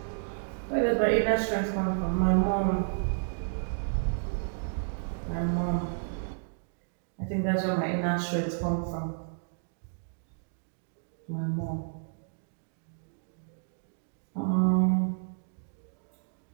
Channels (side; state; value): left; silent; digital silence